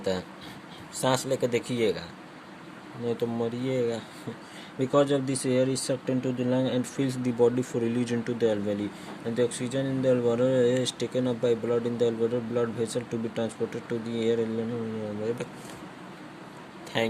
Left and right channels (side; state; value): both; identical; correlation 1.00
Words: है. सांस लेकर देखिएगा नहीं तो मरिएगा. Because of this, air is sucked into the lung and fills the body for release into the alveoli, and the oxygen in the alveoli is taken up by blood in the alveolar blood vessel to be transported to the air.